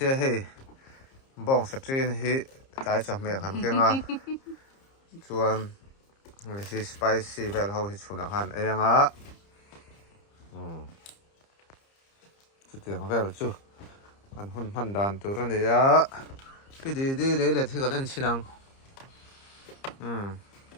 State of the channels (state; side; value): late; right; 30 ms